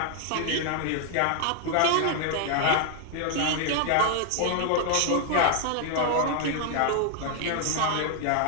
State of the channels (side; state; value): both; different; correlation 0.00